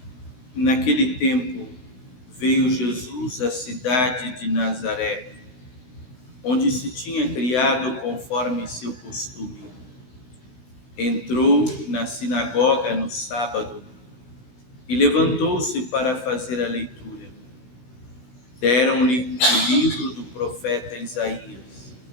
Naquele tempo, veio Jesus à cidade de Nazaré, onde se tinha criado conforme seu costume. Entrou na sinagoga no sábado e levantou-se para fazer a leitura. Deram-lhe o livro do profeta Isaías.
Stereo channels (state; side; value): late; right; 17 ms